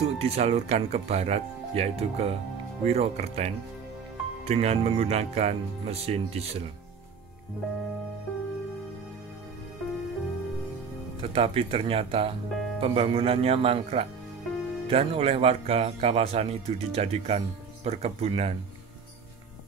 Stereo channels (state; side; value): quieter; left; 6.0 dB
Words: disalurkan ke barat, yaitu ke Wirokerten, dengan menggunakan mesin diesel. Tetapi ternyata pembangunannya mangkrak dan oleh warga kawasan itu dijadikan perkebunan,